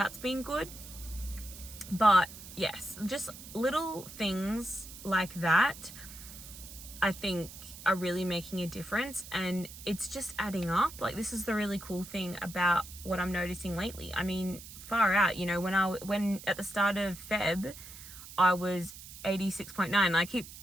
good. But yes, just little things like that, I think are really making a difference, and it's just adding up. Like this is the really cool thing about what I'm noticing lately. I mean, far out, you know, when at the start of Feb, I was 86.9. I keep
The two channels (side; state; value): right; noise; hiss, 15 dB below the sound